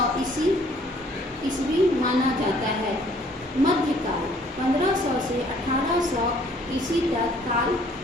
ईस्वी माना जाता है। मध्यकाल 1500 से 1800 ईस्वी तक काल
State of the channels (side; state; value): both; normal; correlation 0.59